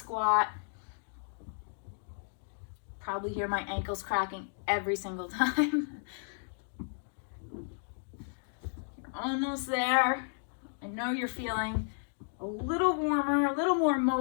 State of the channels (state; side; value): silent; right; digital silence